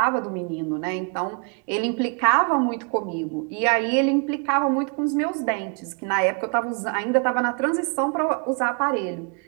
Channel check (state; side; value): quieter; left; 37.2 dB